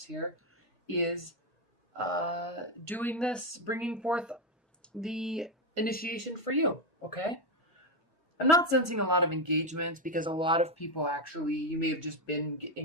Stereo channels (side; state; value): both; normal; correlation 0.07